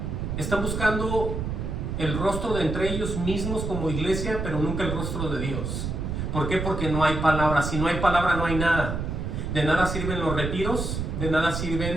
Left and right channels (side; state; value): right; noise; rumble, 3 dB below the sound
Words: Están buscando el rostro de entre ellos mismos como iglesia, pero nunca el rostro de Dios. ¿Por qué? Porque no hay palabra. Si no hay palabra, no hay nada. De nada sirven los retiros, de nada